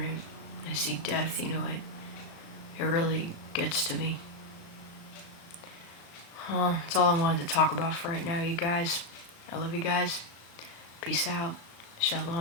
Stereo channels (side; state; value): right; late; 36 ms